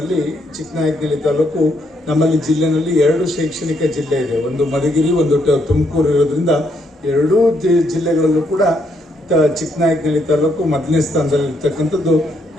ಚಿಕ್ಕನಾಯಕನಹಳ್ಳಿ ತಾಲೂಕು ನಮ್ಮಲ್ಲಿ ಜಿಲ್ಲೆನಲ್ಲಿ 2 ಶೈಕ್ಷಣಿಕ ಜಿಲ್ಲೆ ಇದೆ. ಒಂದು ಮಧುಗಿರಿ, ಒಂದು ತುಮಕೂರು ಇರೋದ್ರಿಂದ 2 ಜಿಲ್ಲೆಗಳಲ್ಲೂ ಕೂಡ ಚಿಕ್ಕನಾಯಕನಹಳ್ಳಿ ತಾಲೂಕು ಮೊದಲನೇ ಸ್ಥಾನದಲ್ಲಿ ಇರ್ತಕ್ಕಂಥದ್ದು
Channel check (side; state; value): both; normal; correlation 0.74